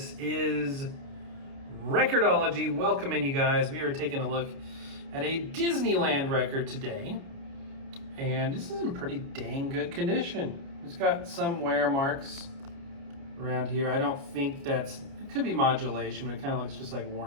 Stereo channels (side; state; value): left; late; 29 ms